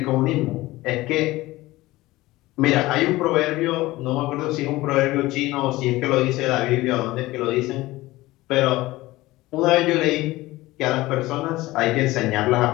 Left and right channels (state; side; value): quieter; right; 18.6 dB